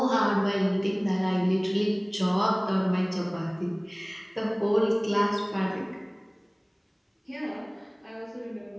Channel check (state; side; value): identical; both; correlation 1.00